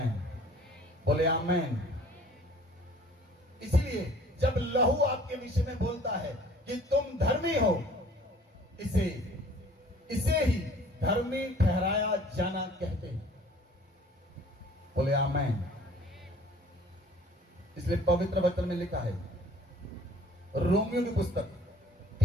बोले आमेन। इसीलिए जब लहू आपके विषय में बोलता है कि तुम धर्मी हो, इसे ही धर्मी ठहराया जाना कहते हैं। बोले आमेन। इसलिए पवित्र वचन में लिखा है, रोमियो की पुस्तक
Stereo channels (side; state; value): both; normal; correlation 0.52